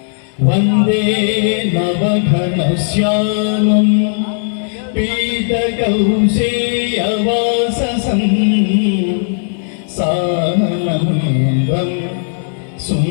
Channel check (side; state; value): right; silent; digital silence